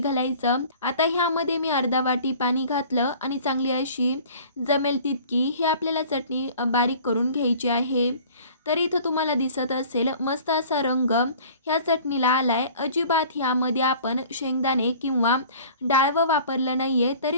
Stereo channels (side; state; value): both; inverted; correlation -0.47